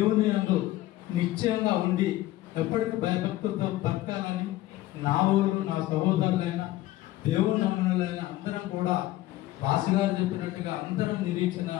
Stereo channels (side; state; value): right; quieter; 16.1 dB